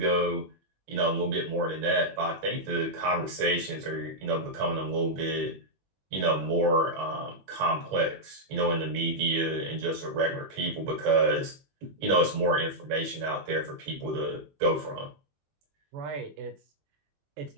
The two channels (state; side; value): late; left; 21 ms